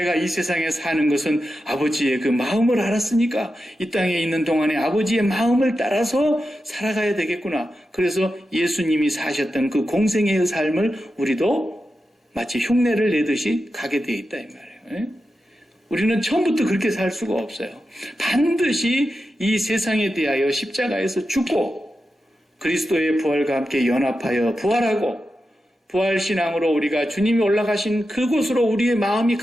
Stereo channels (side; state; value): both; normal; correlation 0.90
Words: 이 세상에 사는 것은 아버지의 그 마음을 알았으니까 이 땅에 있는 동안에 아버지의 마음을 따라서 살아가야 되겠구나. 그래서 예수님이 사셨던 그 공생애의 삶을 우리도 마치 흉내를 내듯이 가게 돼 있다 이 말이에요. 우리는 처음부터 그렇게 살 수가 없어요. 반드시 이 세상에 대하여 십자가에서 죽고 그리스도의 부활과 함께 연합하여 부활하고 부활신앙으로 우리가 주님이 올라가신 그곳으로 우리의 마음이